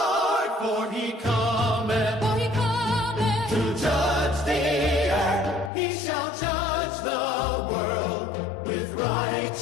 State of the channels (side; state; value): right; drops out; at 5.7 s